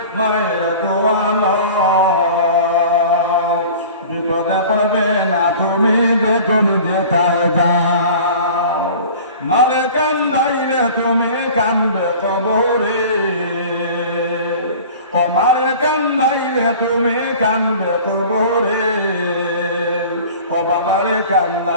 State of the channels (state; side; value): inverted; both; correlation -0.42